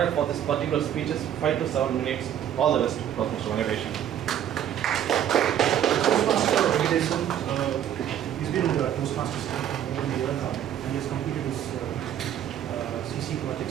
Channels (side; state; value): left; quieter; 10.3 dB